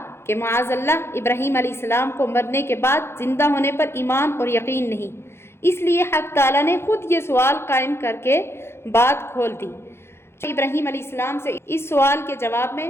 کہ معاذ اللہ ابراہیم علیہ السلام کو مرنے کے بعد زندہ ہونے پر ایمان اور یقین نہیں، اس لیے حق تعالیٰ نے خود یہ سوال قائم کر کے بات کھول دی۔ ابراہیم علیہ السلام سے اس سوال کے جواب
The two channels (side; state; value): right; late; 0.12 ms